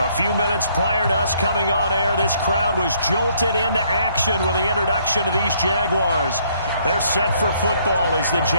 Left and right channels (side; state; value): both; inverted; correlation -0.66